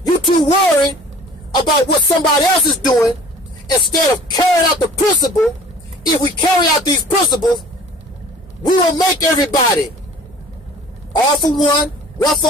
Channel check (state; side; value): normal; both; correlation 0.47